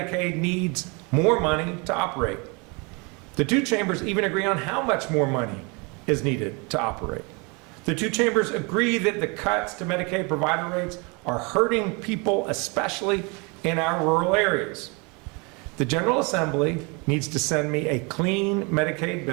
needs more money to operate. The two chambers even agree on how much more money is needed to operate. The two chambers agree that the cuts to Medicaid provider rates are hurting people, especially in our rural areas. The General Assembly needs to send me a clean Medicaid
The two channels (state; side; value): quieter; left; 30.4 dB